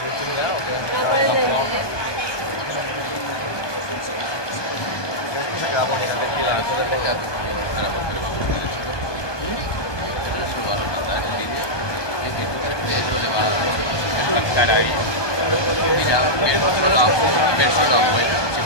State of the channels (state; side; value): late; right; 1.2 ms